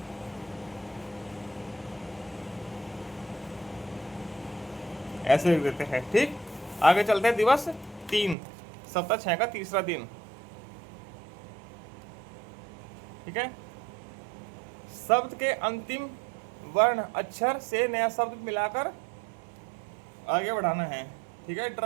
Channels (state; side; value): drops out; left; at 8.3 s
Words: ऐसे लिख देते हैं। ठीक, आगे चलते हैं। दिवस 3, सप्ताह 6 का तीसरा दिन। ठीक है, शब्द के अंतिम वर्ण अक्षर से नया शब्द मिलाकर आगे बढ़ाना है। ठीक है,